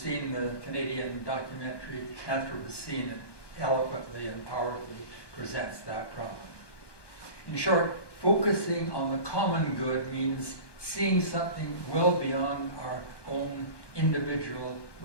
the Canadian documentary Anthropocene, it eloquently and powerfully presents that problem. In short, focusing on the common good means seeing something well beyond our own individual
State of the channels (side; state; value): right; late; 1.2 ms